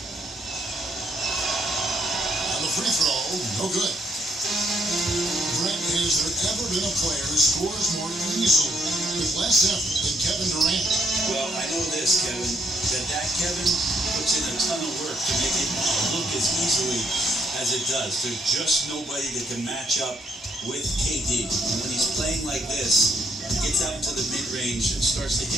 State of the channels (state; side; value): normal; both; correlation 0.72